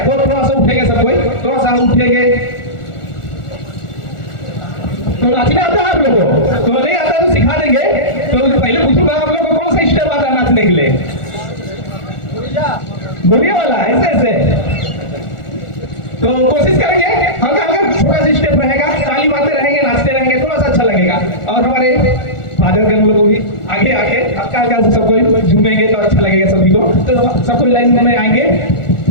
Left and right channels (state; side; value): late; right; 1.4 ms